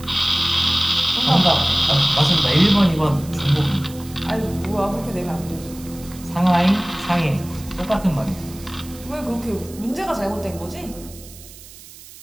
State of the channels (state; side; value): noise; right; hiss, 19 dB below the sound